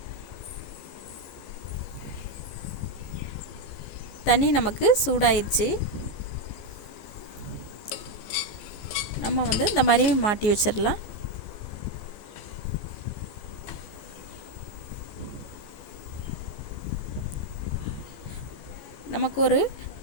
தண்ணி நமக்கு சூடாயிருச்சு. நம்ம இந்த மாதிரி மாட்டி வச்சிடலாம். நமக்கு ஒரு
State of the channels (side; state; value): right; late; 14 ms